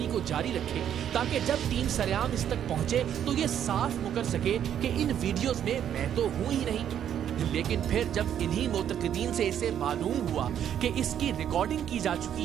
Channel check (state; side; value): quieter; left; 9.7 dB